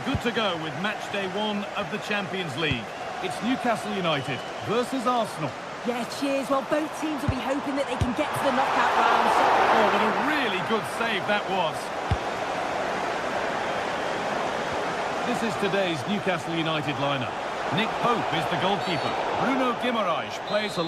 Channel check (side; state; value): both; identical; correlation 1.00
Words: good to go with match day one of the Champions League. It's Newcastle United versus Arsenal. Yeah, cheers. Well, both teams will be hoping that they can get to the knockout round. Oh, what a really good save that was. This is today's Newcastle United lineup. Nick Pope is the goalkeeper. Bruno Guimaraes plays